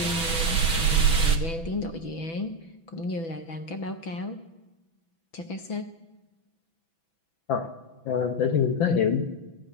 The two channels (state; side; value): late; right; 6.1 ms